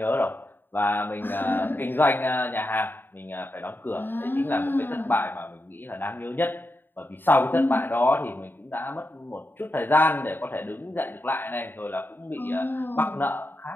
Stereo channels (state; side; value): late; right; 0.094 ms